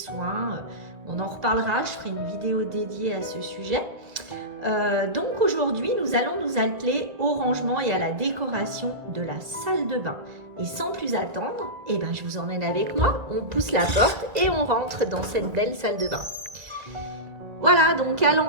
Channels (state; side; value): late; left; 1.7 ms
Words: On en reparlera, je ferai une vidéo dédiée à ce sujet. Donc aujourd'hui, nous allons nous atteler au rangement et à la décoration de la salle de bain. Et sans plus attendre, je vous emmène avec moi, on pousse la porte et on rentre dans cette belle salle de bain. Voilà, donc à